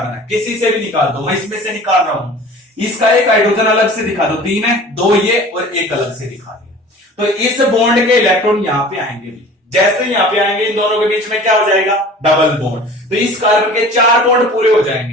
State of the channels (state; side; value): normal; both; correlation 0.43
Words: है, किसी से भी निकाल दो, मैं इसमें से निकाल रहा हूं। इसका एक हाइड्रोजन अलग से दिखा दो, 3 है, 2 ये और एक अलग से दिखा दिया। तो इस बॉन्ड के इलेक्ट्रॉन यहां पे आएंगे भी, जैसे यहां पे आएंगे इन दोनों के बीच में क्या हो जाएगा, डबल बॉन्ड। तो इस कार्बन के 4 बॉन्ड पूरे हो